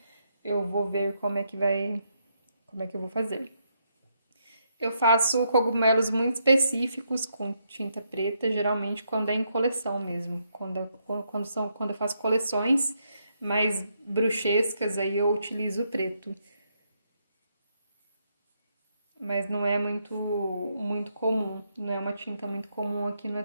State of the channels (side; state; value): both; inverted; correlation -0.78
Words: eu vou ver como é que eu vou fazer. Eu faço cogumelos muito específicos com tinta preta, geralmente quando é em coleção mesmo. Quando eu faço coleções mais bruxescas, aí eu utilizo o preto. Mas não é muito comum, não é uma tinta muito comum aqui no